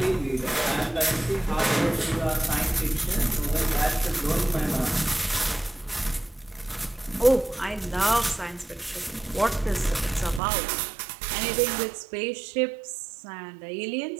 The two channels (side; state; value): left; drops out; at 10.4 s